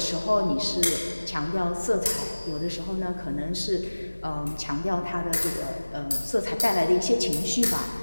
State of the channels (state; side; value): inverted; both; correlation -1.00